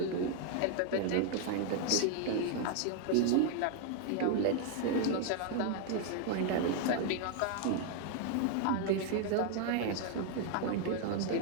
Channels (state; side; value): different; both; correlation 0.00